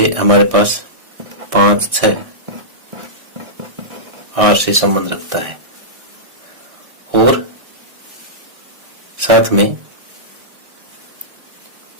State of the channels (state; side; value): late; left; 1.6 ms